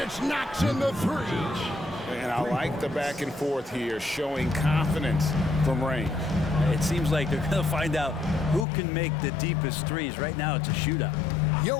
knocks in the 3. And I like the back and forth here, showing confidence from range. It seems like they're going to find out who can make the deepest threes. Right now, it's a shootout.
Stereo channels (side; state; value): right; drops out; at 8.7 s